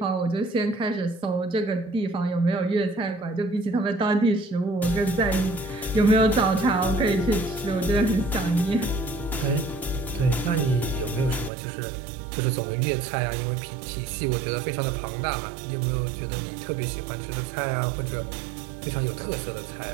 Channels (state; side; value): drops out; left; at 11.5 s